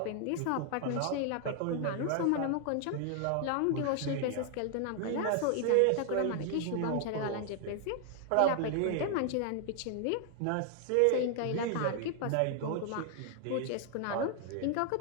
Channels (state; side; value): different; both; correlation 0.00